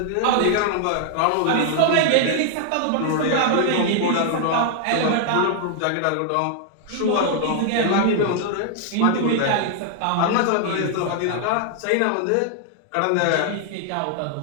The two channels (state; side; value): different; both; correlation 0.00